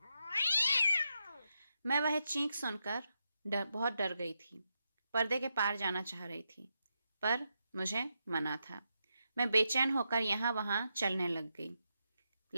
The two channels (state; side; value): inverted; both; correlation -0.84